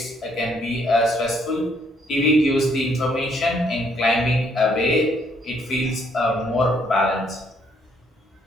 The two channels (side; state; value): both; normal; correlation 0.68